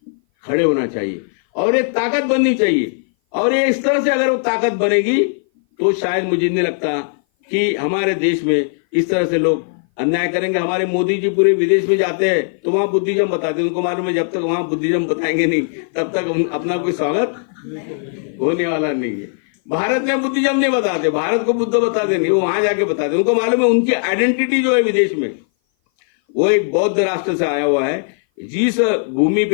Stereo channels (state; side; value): silent; right; 57 dB below the other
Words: खड़े होना चाहिए और ये ताकत बननी चाहिए। और ये इस तरह से अगर वो ताकत बनेगी तो शायद मुझे नहीं लगता कि हमारे देश में इस तरह से लोग अन्याय करेंगे। हमारे मोदी जी पूरे विदेश में जाते हैं तो वहां बुद्धिज्म बताते हैं, उनको मालूम है जब तक वहां बुद्धिज्म बताएंगे नहीं तब तक अपना कोई स्वागत होने वाला नहीं है। भारत में बुद्धिज्म नहीं बताते, भारत को बुद्ध बताते नहीं, वो वहां जाके बताते, उनको मालूम है उनकी आइडेंटिटी जो है विदेश में वो एक बौद्ध राष्ट्र से आया हुआ है। जिस भूमि